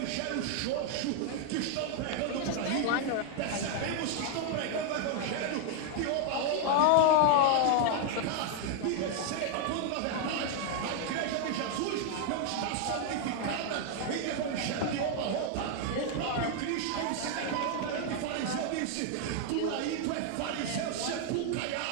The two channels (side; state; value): both; different; correlation 0.00